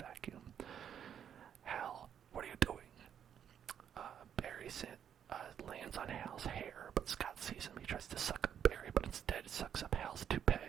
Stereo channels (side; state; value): left; quieter; 8.8 dB